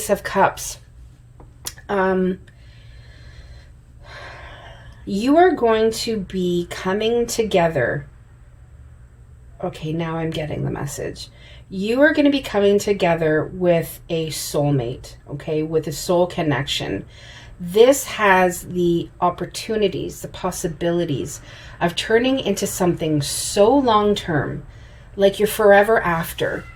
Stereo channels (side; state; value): both; identical; correlation 1.00